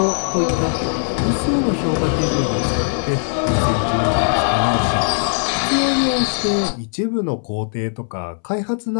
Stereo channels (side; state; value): right; silent; 66 dB below the other